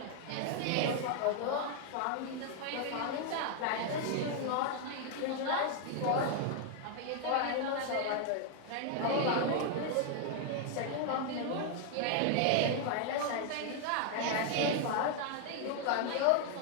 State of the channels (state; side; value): different; both; correlation 0.00